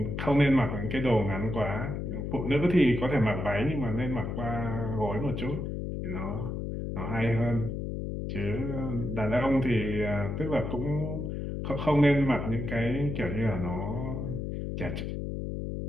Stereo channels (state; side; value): noise; left; hum, 4 dB below the sound